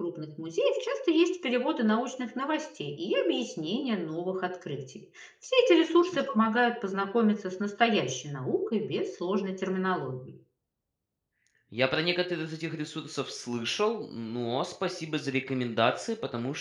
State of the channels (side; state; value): both; identical; correlation 1.00